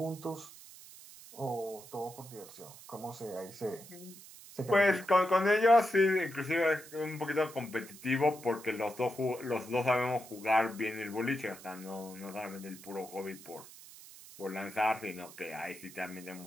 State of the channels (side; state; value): right; noise; hiss, 18 dB below the sound